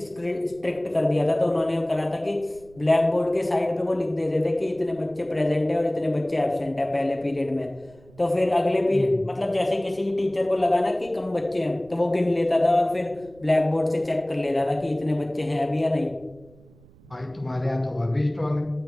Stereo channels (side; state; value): right; noise; rumble, 25 dB below the sound